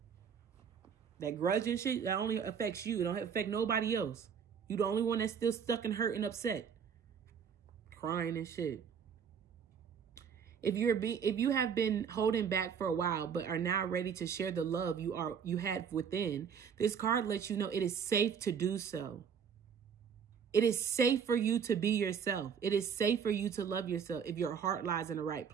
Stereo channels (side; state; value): left; quieter; 7.1 dB